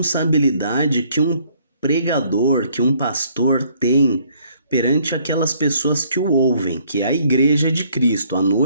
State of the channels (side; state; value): both; inverted; correlation -0.64